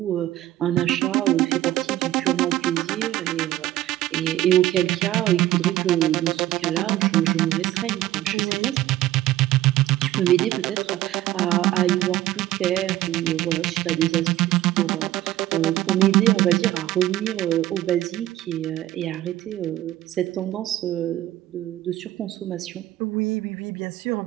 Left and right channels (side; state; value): left; quieter; 14.4 dB